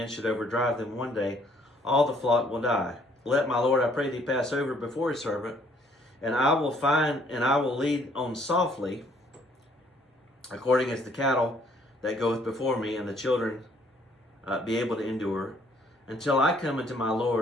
should overdrive them one day, all the flock will die. Let my Lord, I pray thee, pass over before his servant, and I will lead on softly, according as the cattle that goeth before me, and the children be able to endure, until I come unto my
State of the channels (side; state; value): both; normal; correlation 0.63